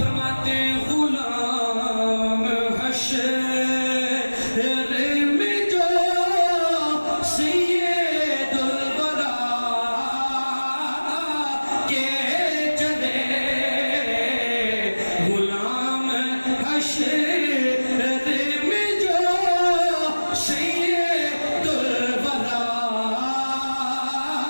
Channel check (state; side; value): inverted; both; correlation -1.00